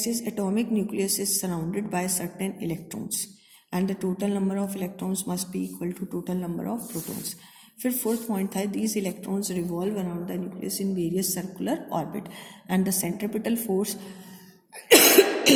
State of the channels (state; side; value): identical; both; correlation 1.00